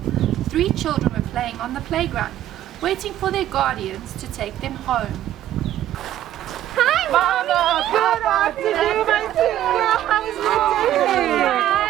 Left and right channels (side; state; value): left; quieter; 12.5 dB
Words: 3 children were playing on the playground, waiting for their guardians to take them home. Hi, Mama! Good afternoon, my dear. How was your day?